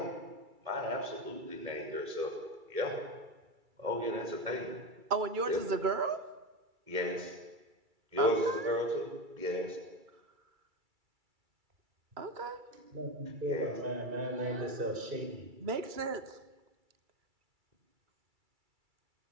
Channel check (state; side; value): late; left; 2.3 ms